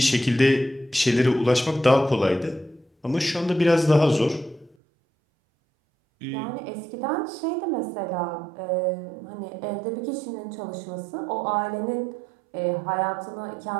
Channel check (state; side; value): drops out; left; at 4.8 s